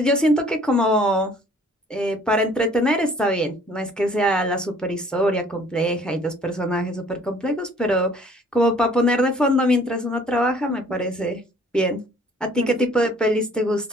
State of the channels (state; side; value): normal; both; correlation 0.56